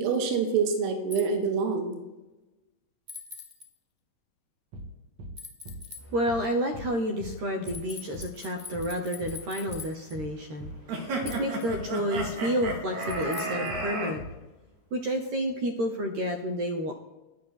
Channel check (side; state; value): left; late; 13 ms